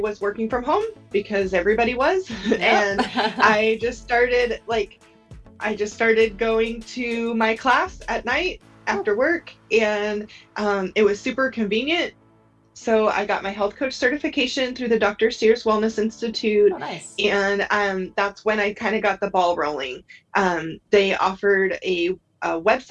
was working from home because everybody was. And I just started going to my class at night after work, and it was super convenient. So I got my health coach certification through the Dr. Sears Wellness Institute. Oh, nice. And that's when I kind of got the ball rolling. They offered a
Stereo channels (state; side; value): identical; both; correlation 1.00